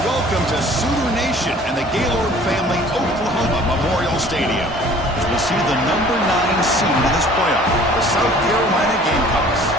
welcome to Sooner Nation and the Gaylord Family Oklahoma Memorial Stadium. As we see the number 9 seed in this playoff, the South Carolina Gamecocks,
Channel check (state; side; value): normal; both; correlation 0.51